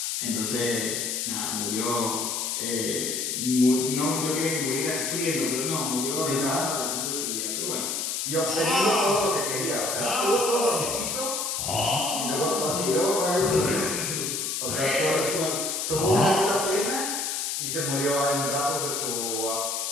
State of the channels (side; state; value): left; noise; hiss, 1 dB below the sound